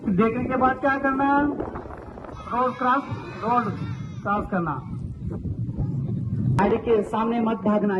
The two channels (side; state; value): both; identical; correlation 1.00